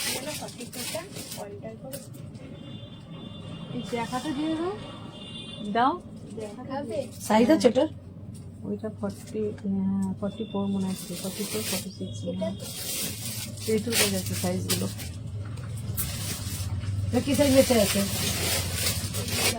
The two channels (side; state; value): both; identical; correlation 1.00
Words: সাইজ আছে ওটার, ওইটা 44 মনে আছে, 44, 46 এইটুকু যাচ্ছে সাইজগুলো। কি সাইজ বেঁচে আছে,